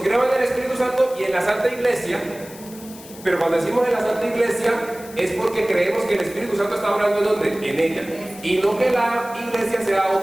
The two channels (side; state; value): left; noise; hiss, 18 dB below the sound